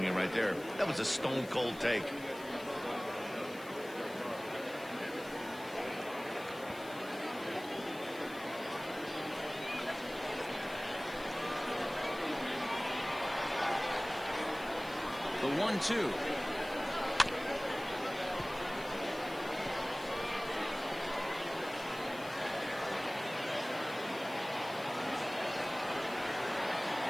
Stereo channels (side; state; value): left; noise; hiss, 19 dB below the sound